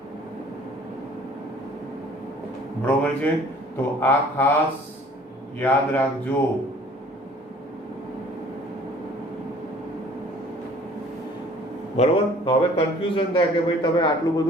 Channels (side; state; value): both; normal; correlation 0.53